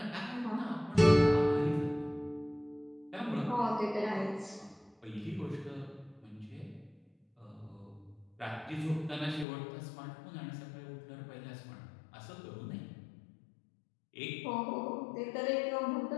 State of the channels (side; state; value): right; drops out; at 9.5 s